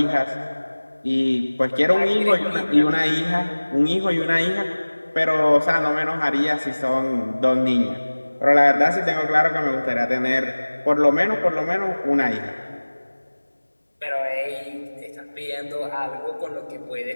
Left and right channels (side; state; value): both; inverted; correlation -1.00